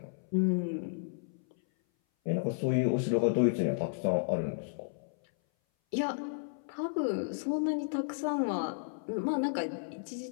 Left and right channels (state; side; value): silent; right; 56 dB below the other